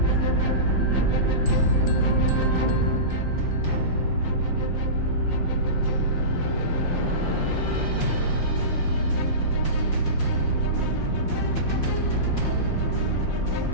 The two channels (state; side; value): late; right; 5.7 ms